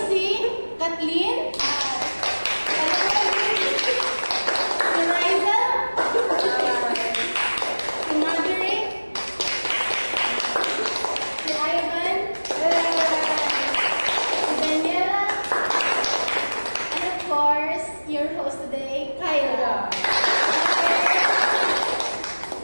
si Kathleen, si Riza, si Marjorie, si Ivan, si Daniela, and of course, your host today, Kyla.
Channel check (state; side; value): inverted; both; correlation -1.00